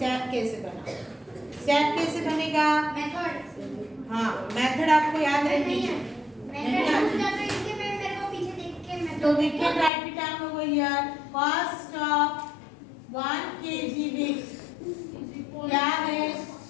कैसे बनाऊं। स्टेप कैसे बनेगा? मेथड। हाँ, मेथड आपको याद रखनी है। तो we can write it down over here. Cost of 1 kg wheat क्या है?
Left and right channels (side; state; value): right; drops out; at 9.9 s